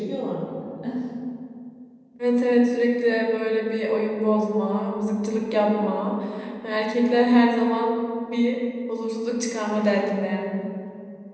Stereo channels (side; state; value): both; identical; correlation 1.00